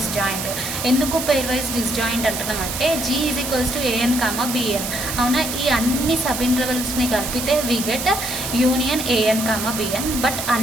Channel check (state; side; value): noise; right; hiss, 5 dB below the sound